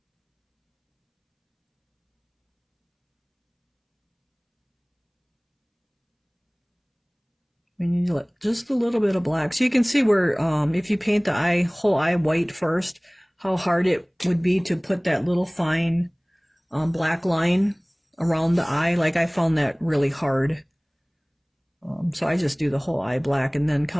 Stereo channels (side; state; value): both; identical; correlation 1.00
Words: We need to let just a little bit of black. So you can see where, if you paint the whole eye white first, how hard it would be to put that little fine black line around the eye. Like, I found that really hard. So I just do the whole eye black and then